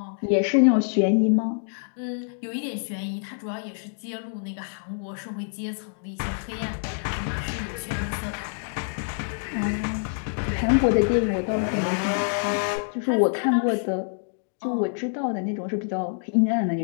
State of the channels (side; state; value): right; silent; digital silence